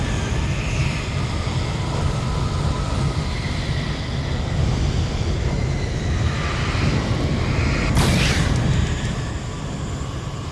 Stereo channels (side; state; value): both; identical; correlation 1.00